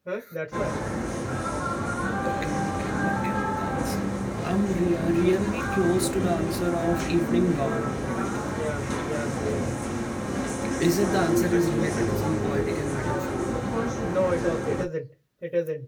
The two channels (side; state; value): both; identical; correlation 1.00